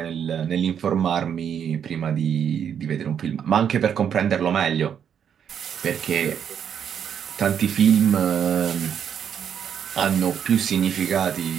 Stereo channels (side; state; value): left; quieter; 8.3 dB